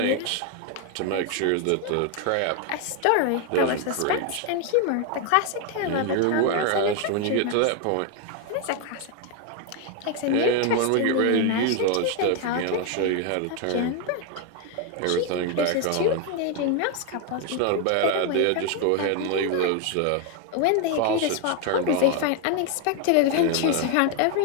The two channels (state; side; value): different; both; correlation 0.01